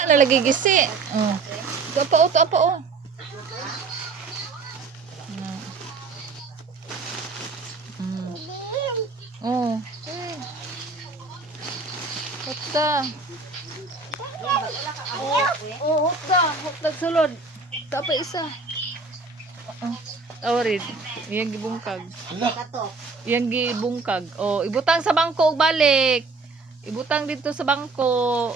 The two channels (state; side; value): quieter; left; 4.1 dB